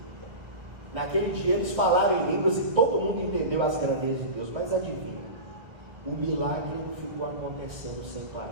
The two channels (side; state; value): left; late; 1.8 ms